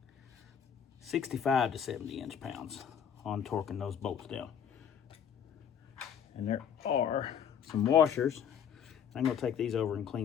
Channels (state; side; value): quieter; right; 8.2 dB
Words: 65 to 70 inch-pounds on torquing those bolts down. And there are some washers. I'm going to take these over and